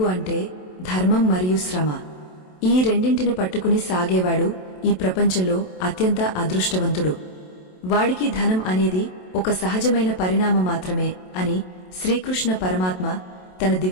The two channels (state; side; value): late; right; 27 ms